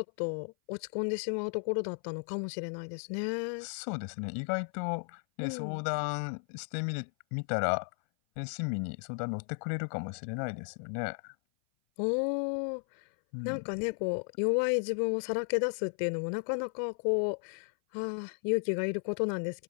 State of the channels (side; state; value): right; silent; 55 dB below the other